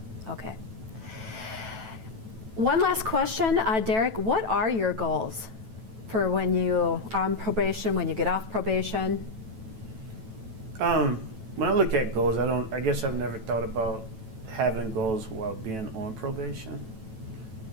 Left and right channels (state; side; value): late; left; 9.1 ms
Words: Okay. One last question, Derrick. What are your goals for when you are on probation, when you get off probation? When I look at goals, I guess I've never thought about having goals while being on probation.